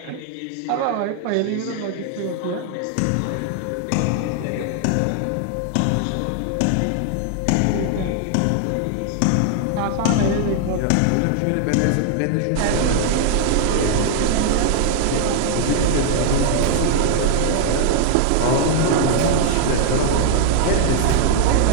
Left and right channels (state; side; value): different; both; correlation 0.00